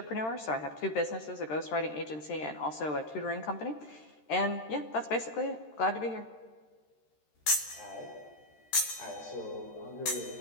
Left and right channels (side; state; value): right; late; 13 ms